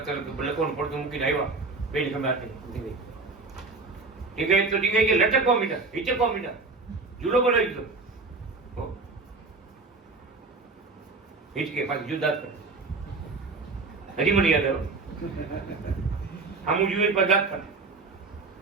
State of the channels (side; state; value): left; quieter; 4.0 dB